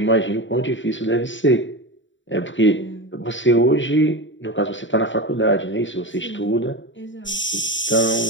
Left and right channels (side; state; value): right; late; 0.55 ms